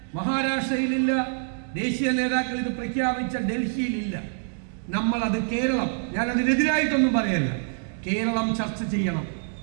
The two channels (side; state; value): left; silent; 61 dB below the other